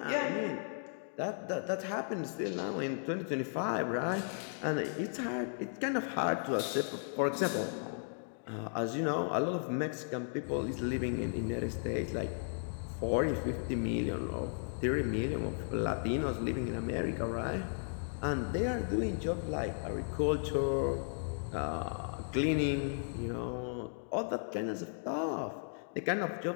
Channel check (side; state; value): right; silent; digital silence